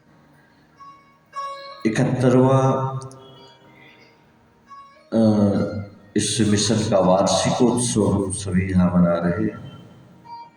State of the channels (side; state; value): both; identical; correlation 1.00